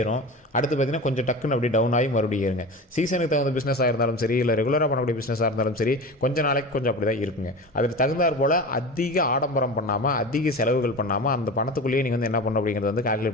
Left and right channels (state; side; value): normal; both; correlation 0.30